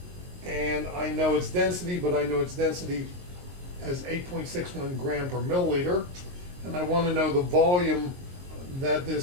and I know its density, but I know its density as 8.61 gram per milliliter, and I want to know the volume that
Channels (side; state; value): left; late; 22 ms